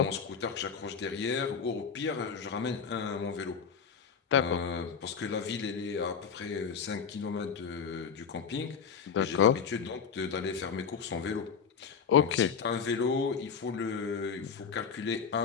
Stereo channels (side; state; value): right; quieter; 6.4 dB